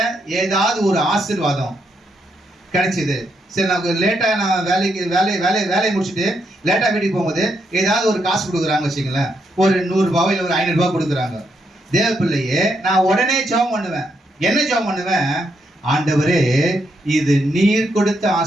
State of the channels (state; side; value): normal; both; correlation 0.79